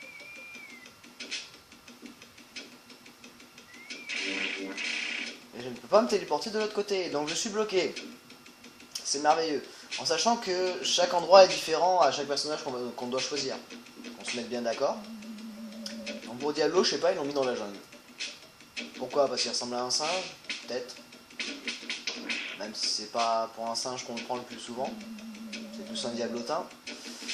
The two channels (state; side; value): identical; both; correlation 1.00